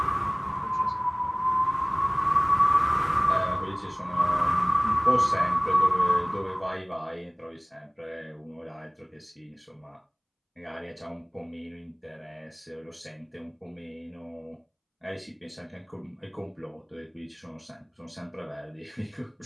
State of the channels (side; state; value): both; identical; correlation 1.00